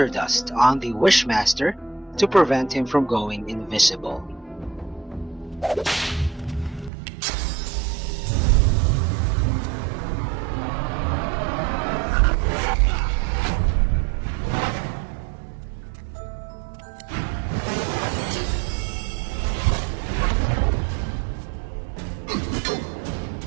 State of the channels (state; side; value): drops out; left; at 6.9 s